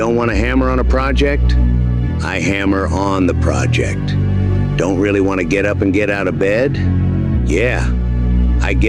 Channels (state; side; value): identical; both; correlation 1.00